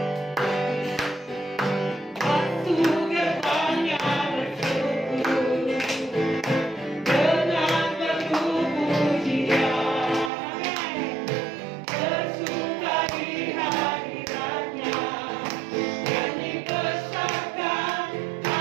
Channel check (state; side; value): drops out; left; at 10.3 s